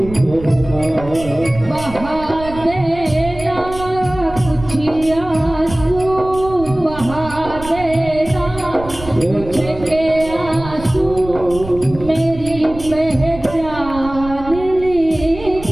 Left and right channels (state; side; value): noise; right; rumble, 13 dB below the sound